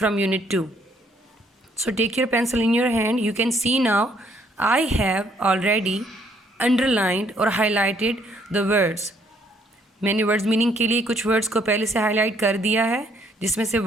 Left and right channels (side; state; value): both; normal; correlation 0.67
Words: unit 2. So take your pencil in your hand. You can see now I have already underlined or highlighted the words. मैंने words meaning के लिए कुछ वर्ड्स को पहले से highlight कर दिया है, जिसमें से